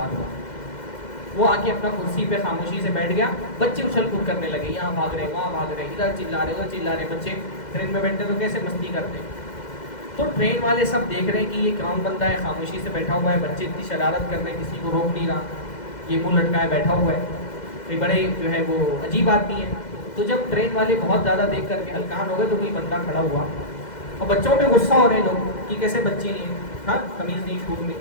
ہوا، وہ آ کے اپنا کرسی پہ خاموشی سے بیٹھ گیا، بچے اچھل کود کرنے لگے، یہاں بھاگ رہے وہاں بھاگ رہے، ادھر چلا رہے ادھر چلا رہے۔ بچے ٹرین میں بیٹھتے تو کیسے مستی کرتے، تو ٹرین والے سب دیکھ رہے ہیں کہ یہ کون بندہ ہے، خاموشی سے بیٹھا ہوا ہے، بچے اتنی شرارت کر رہے ہیں، کسی کو روک نہیں رہا، یہ منہ لٹکائے بیٹھا ہوا ہے، یہ بڑے جو ہے وہ عجیب آدمی ہے۔ تو جب ٹرین والے بہت زیادہ دیکھ کر کے ہلکان ہو گئے تو کوئی بندہ کھڑا ہوا، اور بچوں پہ غصہ ہو رہے ہیں لوگ کہ کیسے بچے ہیں، ہاں تمیز نہیں شعور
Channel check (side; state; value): right; late; 2.1 ms